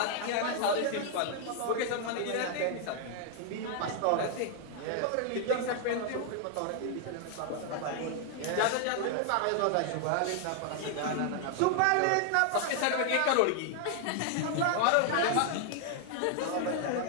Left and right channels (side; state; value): both; different; correlation 0.00